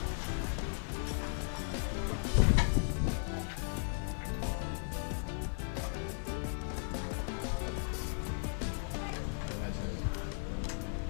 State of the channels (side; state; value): right; silent; 54 dB below the other